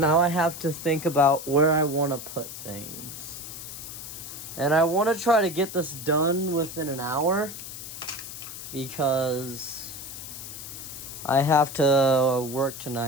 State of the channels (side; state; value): left; noise; hiss, 10 dB below the sound